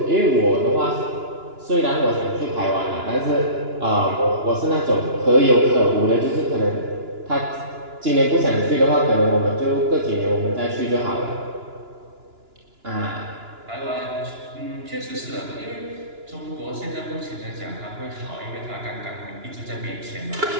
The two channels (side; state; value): left; late; 2.9 ms